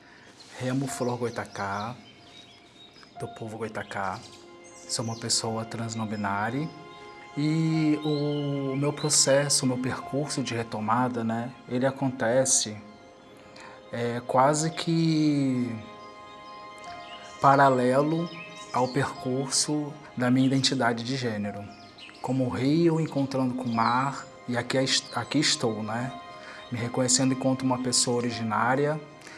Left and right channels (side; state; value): both; identical; correlation 1.00